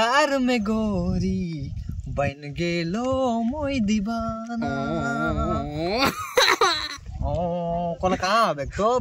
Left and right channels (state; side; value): identical; both; correlation 1.00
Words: में गोरी बन गेलो मोई दीवाना ओ कौन कहां है तो